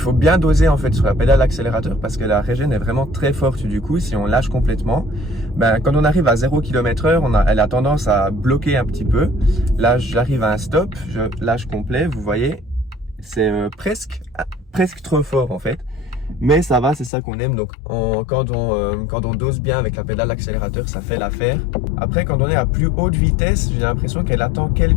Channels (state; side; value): drops out; right; at 17.1 s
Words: bien doser en fait sur la pédale d'accélérateur parce que la régène est vraiment très forte du coup. Si on lâche complètement, quand on arrive à 0 km/h, elle a tendance à bloquer un petit peu. Là, j'arrive à un stop, je lâche complet, vous voyez, c'est presque trop fort en fait. Mais ça va, c'est ça qu'on aime. Donc quand on dose bien avec la pédale d'accélérateur, ça fait l'affaire. Après, quand on est à plus haute vitesse, j'ai l'impression qu'elle attend